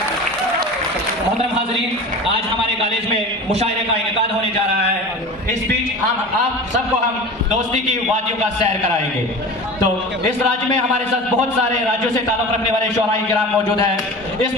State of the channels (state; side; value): normal; both; correlation 0.34